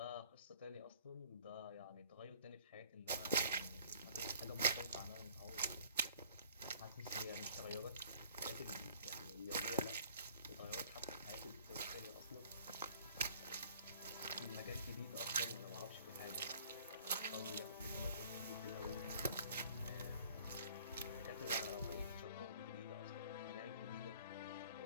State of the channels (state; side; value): inverted; both; correlation -0.54